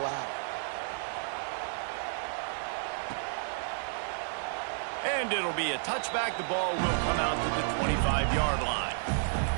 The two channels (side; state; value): left; silent; digital silence